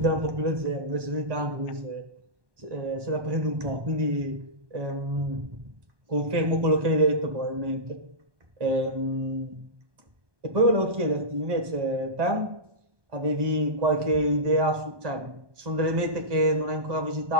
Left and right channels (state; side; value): late; left; 1.2 ms